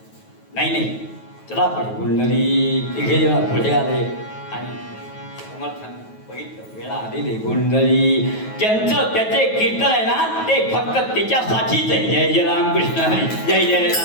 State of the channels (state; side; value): late; right; 9.2 ms